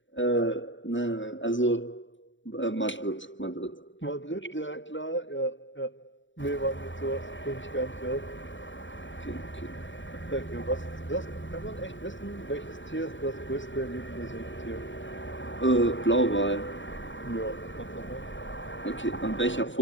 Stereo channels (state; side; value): late; right; 0.55 ms